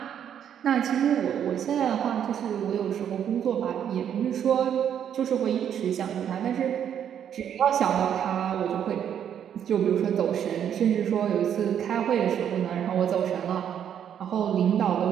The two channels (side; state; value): left; quieter; 9.1 dB